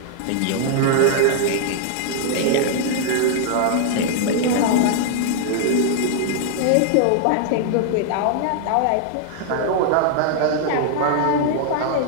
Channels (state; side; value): different; both; correlation -0.01